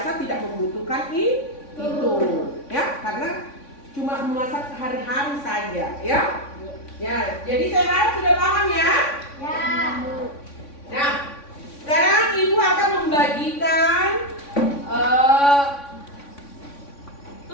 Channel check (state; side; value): late; right; 3.6 ms